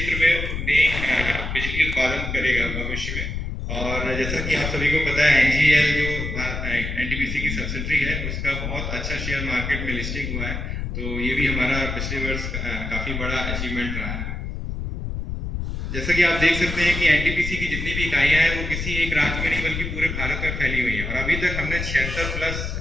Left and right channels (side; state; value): left; noise; rumble, 4 dB below the sound